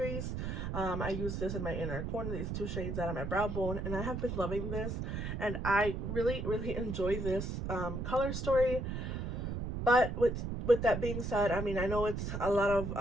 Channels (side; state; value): right; noise; rumble, 3 dB below the sound